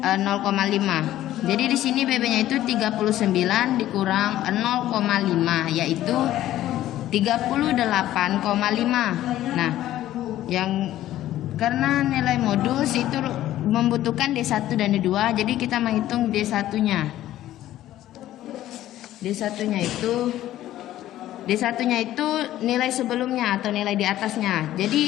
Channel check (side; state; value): right; quieter; 13.6 dB